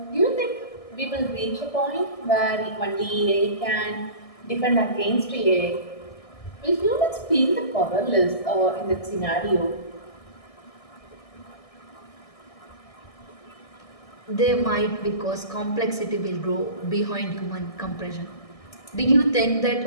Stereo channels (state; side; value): late; right; 1.6 ms